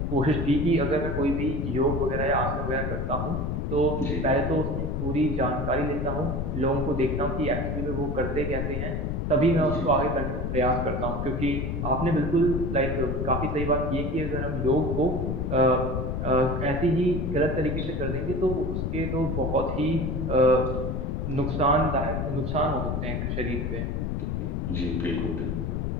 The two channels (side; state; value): left; noise; rumble, 1 dB below the sound